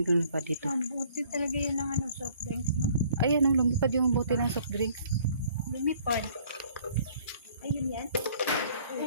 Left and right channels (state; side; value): inverted; both; correlation -0.58